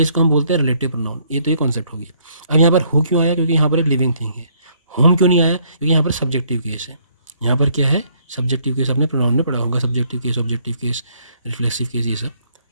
इसको हम बोलते हैं रिलेटिव प्रोनाउन। ये तो ये कॉन्सेप्ट हो गया। अब यहाँ पर हु क्यों आया, क्योंकि यहाँ पर एक लिविंग थिंग है। होम क्यों नहीं आया, क्योंकि यहाँ पर सब्जेक्टिव केस है। यहाँ पर क्या है, सब्जेक्टिव केस। आपने प्रोनाउन में पढ़ा होगा, subjective case, objective case, reflexive case, ये सब।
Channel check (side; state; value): both; inverted; correlation -0.66